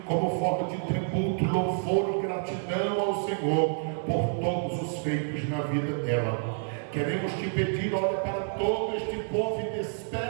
como forma de tributo, louvor e gratidão ao Senhor por todos os feitos na vida dela. Queremos te pedir, olha para todo este povo e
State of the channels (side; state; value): left; silent; digital silence